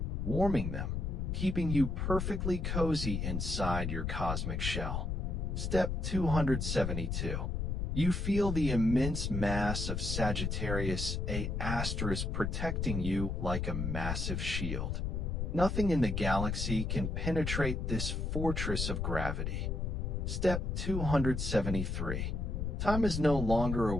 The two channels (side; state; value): left; noise; rumble, 1 dB below the sound